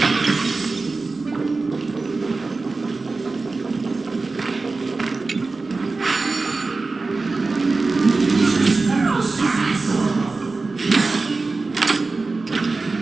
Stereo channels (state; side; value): quieter; left; 3.8 dB